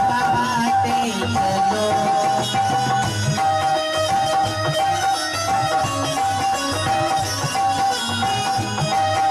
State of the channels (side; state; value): both; identical; correlation 1.00